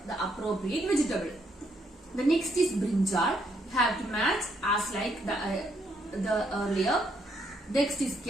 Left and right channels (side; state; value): both; normal; correlation 0.73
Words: the appropriate vegetable. The next is brinjal. You have to match as like the earlier. Next is